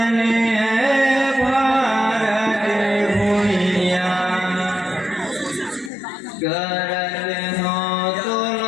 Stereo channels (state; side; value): drops out; right; at 5.9 s